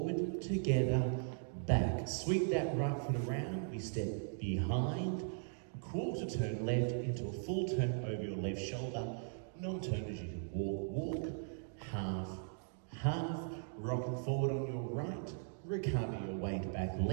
together, back. Sweep that right foot around. We step behind. Quarter turn left into a full turn over your left shoulder. Non-turn as you can walk. Half, half. Rocking forward on your right. Recover your weight back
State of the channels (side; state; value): left; silent; digital silence